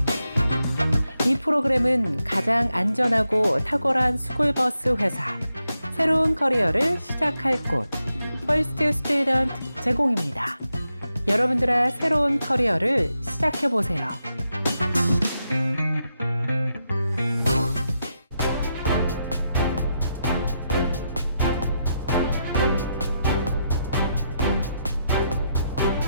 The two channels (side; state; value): both; inverted; correlation -0.84